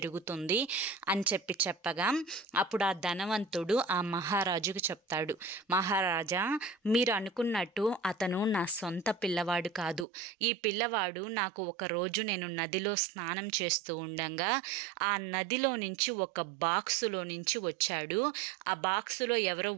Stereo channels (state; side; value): drops out; left; at 10.1 s